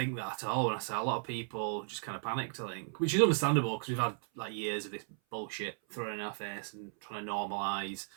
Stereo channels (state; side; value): silent; left; 54 dB below the other